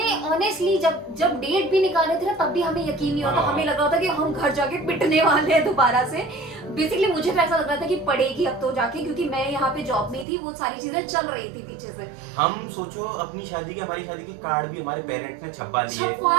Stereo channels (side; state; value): left; drops out; at 10.2 s